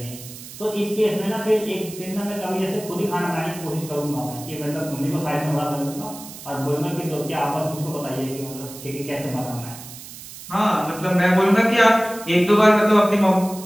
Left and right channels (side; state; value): right; noise; hiss, 14 dB below the sound